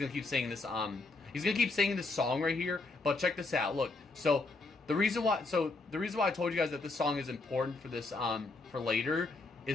keep saying this. He's gonna keep singing this song right here. But check this out. Look. So the reason why I told you guys that this song is important for this for later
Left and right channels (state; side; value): quieter; right; 3.5 dB